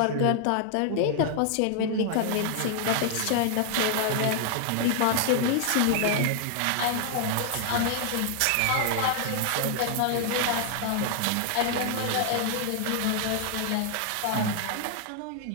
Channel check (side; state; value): both; different; correlation 0.00